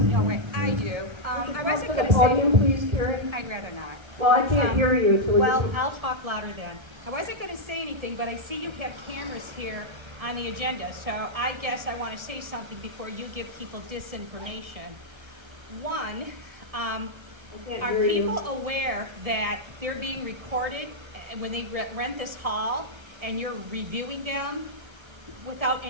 No, I do. I wasn't going to the say... podium, please, Karen. I'd rather not. Well, I can't hear you. So well, I'll talk louder then. I wasn't going to say anything, but I see you have cameras here on the agenda, so I guess I want to say something before you give people disinformation. One, are people aware that they're being recorded when they rent this hall, and you're reviewing them without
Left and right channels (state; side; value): late; left; 1.3 ms